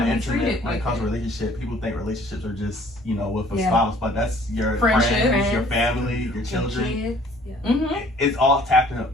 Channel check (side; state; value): both; normal; correlation 0.56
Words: wanna the be treated internet when it like comes to that. relationship. People think relationships are just, with a Yeah. spouse, but that's your Friendship. friends, your family, your children. Kids. It's all tapping